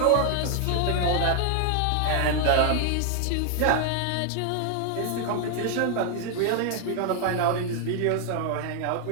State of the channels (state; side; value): different; both; correlation 0.00